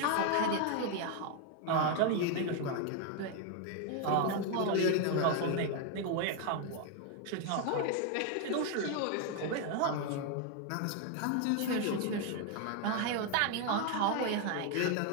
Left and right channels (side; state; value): both; different; correlation 0.01